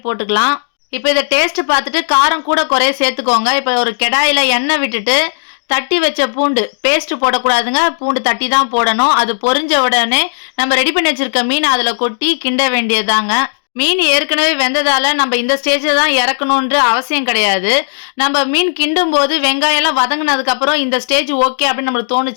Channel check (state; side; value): silent; right; 71 dB below the other